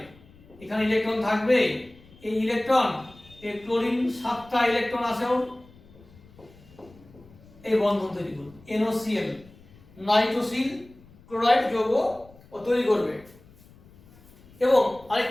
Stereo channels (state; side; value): noise; left; rumble, 25 dB below the sound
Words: এখানে ইলেকট্রন থাকবে, এই ইলেকট্রন, এই ক্লোরিন 7টা ইলেকট্রন আছেও, এই বন্ধন তৈরি করবে, NOCl নাইট্রোসিল ক্লোরাইড যৌগ ও তৈরি করবে। এবং